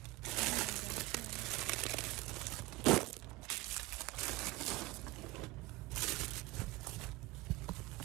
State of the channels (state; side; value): quieter; left; 20.6 dB